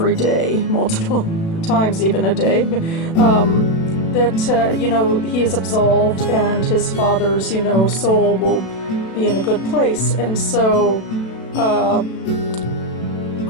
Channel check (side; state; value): right; late; 36 ms